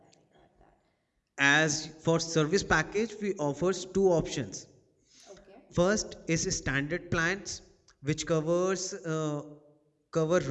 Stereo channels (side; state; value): both; identical; correlation 1.00